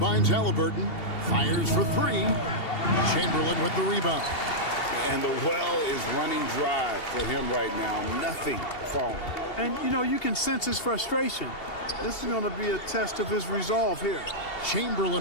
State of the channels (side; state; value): right; late; 2.7 ms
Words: Halliburton. Fires for 3. Chamberlain with the rebound. And the well is running dry for him right now. Nothing falling. And, you know, you can sense his frustration. This is going to be a test of his resolve here.